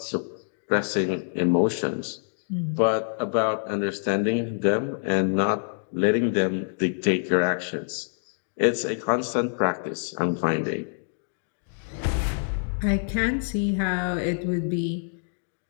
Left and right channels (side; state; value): right; silent; digital silence